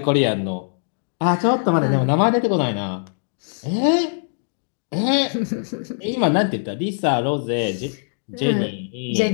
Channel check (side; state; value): right; silent; 61 dB below the other